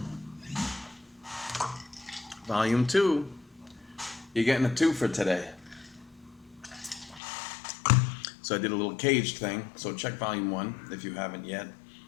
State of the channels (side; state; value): right; drops out; at 7.2 s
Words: Volume 2. You're getting a 2 for today. So I did a little caged thing. So check Volume 1 if you haven't yet.